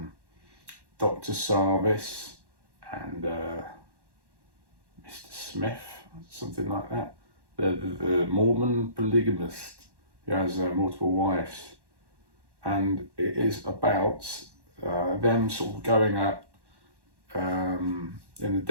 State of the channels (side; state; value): left; late; 1.1 ms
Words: Dr. Sarvis, and Mr. Smith, something like that. The Mormon polygamist who has multiple wives, and it is about them sort of going out in the